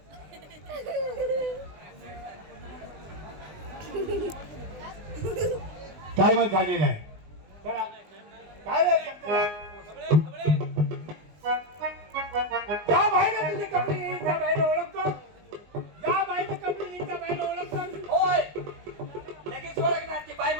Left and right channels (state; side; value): late; left; 19 ms